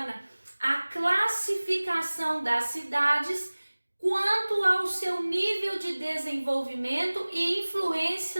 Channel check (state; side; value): inverted; both; correlation -1.00